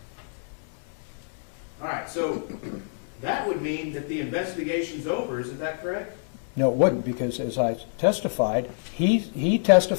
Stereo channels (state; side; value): silent; right; digital silence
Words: All right, so that would mean that the investigation's over, isn't that correct? No, it wouldn't, because as I testified, he